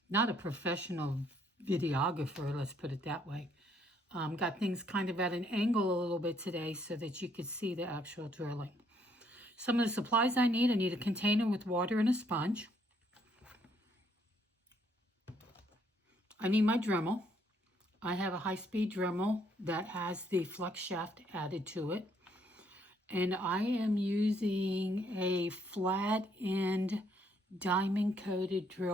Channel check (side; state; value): both; normal; correlation 0.68